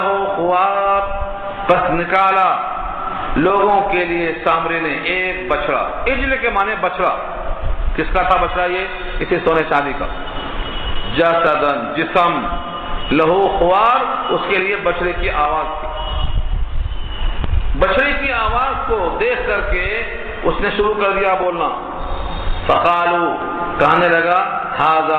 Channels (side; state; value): both; identical; correlation 1.00